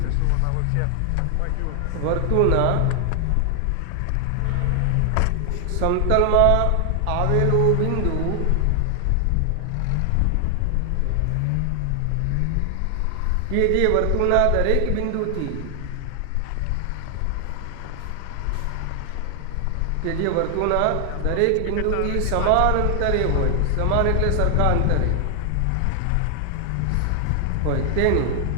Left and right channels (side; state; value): both; different; correlation 0.00